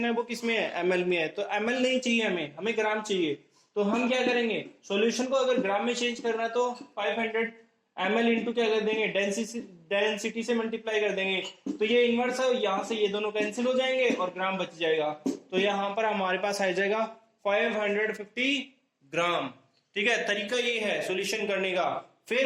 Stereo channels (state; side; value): identical; both; correlation 1.00